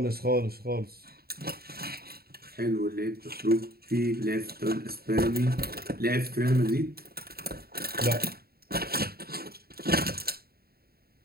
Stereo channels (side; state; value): left; late; 0.45 ms